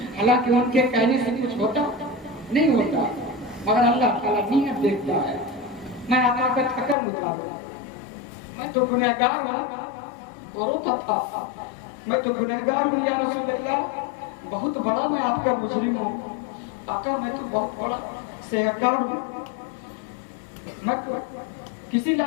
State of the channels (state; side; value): drops out; right; at 7.0 s